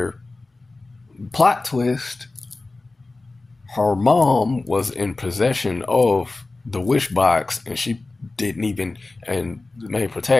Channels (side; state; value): right; quieter; 3.3 dB